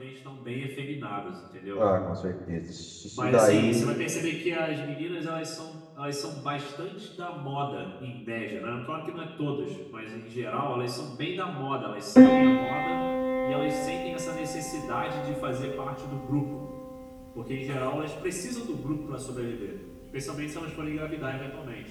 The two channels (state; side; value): identical; both; correlation 1.00